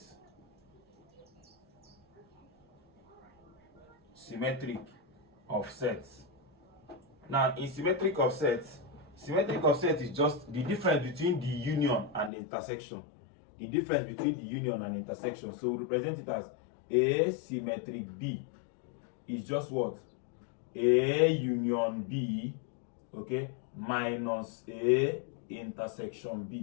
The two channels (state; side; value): drops out; right; at 12.3 s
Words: Symmetric of sets. Now, in symmetric of sets is just the difference between the union and the intersection. The difference between the union and intersection. So we represent it as A symmetric B is just what? A union B, okay, minus A intersection